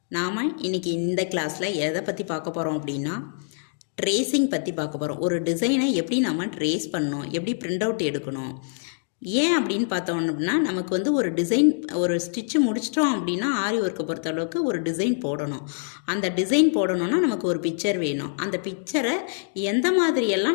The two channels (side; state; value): right; silent; digital silence